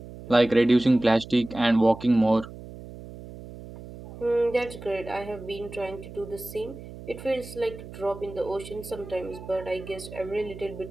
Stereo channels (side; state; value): right; noise; hum, 14 dB below the sound